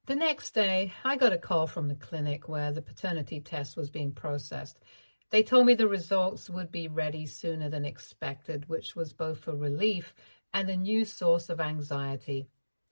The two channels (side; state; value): both; inverted; correlation -1.00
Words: The next day, I got a call from the clinic where the paternity test was being processed. They told me the results would be ready sooner than expected, which was both a relief and a new source of anxiety.